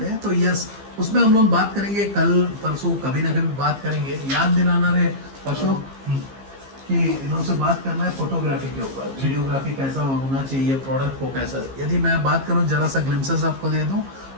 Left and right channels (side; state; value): left; late; 15 ms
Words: हैं। तो यस, उसमें हम लोग बात करेंगे, कल परसों कभी ना कभी बात करेंगे। याद दिलाना रहे परसों, कि इनसे बात करना है फोटोग्राफी के ऊपर, वीडियोग्राफी कैसा होना चाहिए, प्रोडक्ट को कैसा। यदि मैं बात करूं, जरा सा ग्लिम्सेस आपको दे दूं,